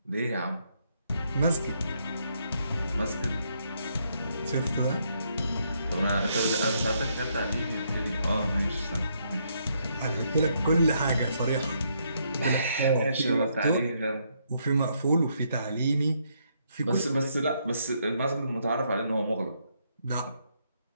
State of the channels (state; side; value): inverted; both; correlation -0.74